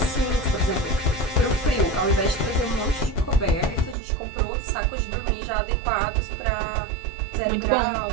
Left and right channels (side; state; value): left; drops out; at 4.0 s